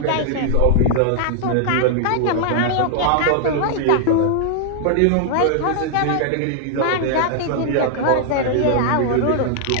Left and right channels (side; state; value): both; different; correlation -0.01